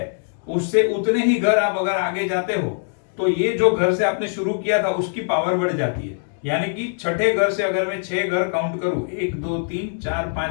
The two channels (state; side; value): silent; right; digital silence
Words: उससे उतने ही घर आप अगर आगे जाते हो तो ये जो घर से आपने शुरू किया था उसकी पावर बढ़ जाती है। यानी कि छठे घर से अगर मैं 6 घर काउंट करूं, 1, 2, 3, 4,